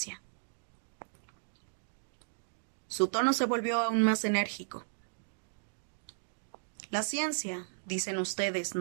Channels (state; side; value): silent; left; digital silence